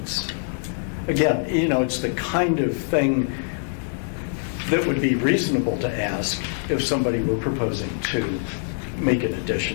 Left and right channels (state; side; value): silent; right; digital silence